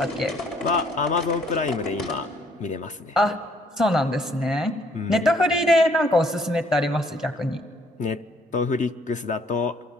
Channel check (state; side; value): normal; both; correlation 0.64